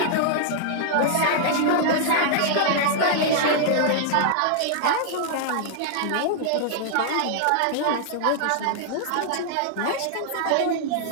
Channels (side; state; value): both; different; correlation -0.01